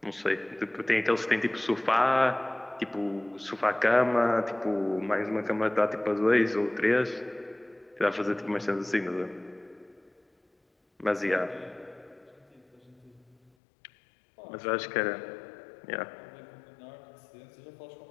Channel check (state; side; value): drops out; right; at 13.5 s